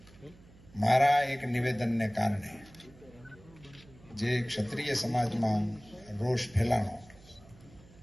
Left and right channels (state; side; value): noise; right; hum, 24 dB below the sound